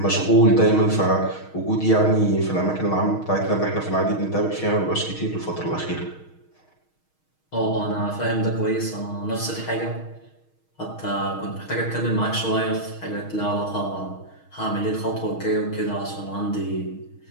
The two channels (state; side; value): late; right; 6.4 ms